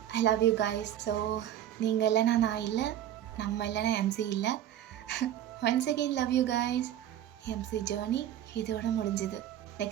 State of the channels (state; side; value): quieter; left; 11.4 dB